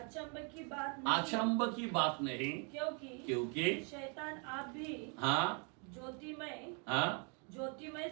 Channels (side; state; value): left; quieter; 37.5 dB